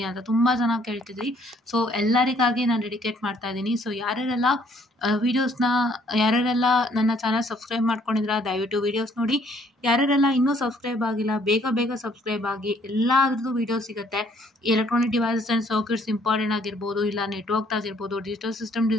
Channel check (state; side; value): normal; both; correlation 0.63